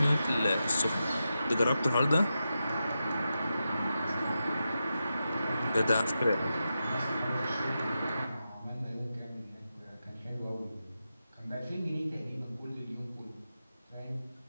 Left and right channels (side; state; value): both; inverted; correlation -0.89